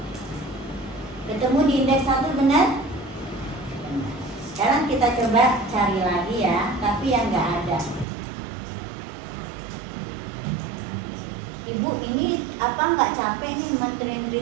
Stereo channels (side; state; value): left; drops out; at 8.1 s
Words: Ketemu di indeks 1 benar? Benar. Sekarang kita coba cari lagi ya, tapi yang nggak ada. Ibu ini apa nggak capek nih